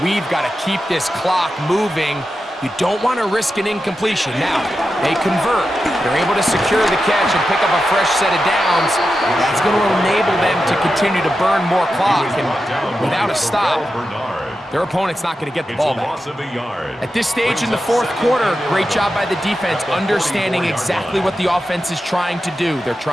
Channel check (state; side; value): normal; both; correlation 0.90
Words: We've got to keep this clock moving. You don't want to risk an incompletion. Now, they convert. They're able to secure the catch and pick up a fresh set of downs. That's going to enable them to continue to burn more clock. And without a stop, their opponent's not going to get the ball back. At this stage in the fourth quarter, great job by the defense, understanding exactly what the offense is trying to do. They're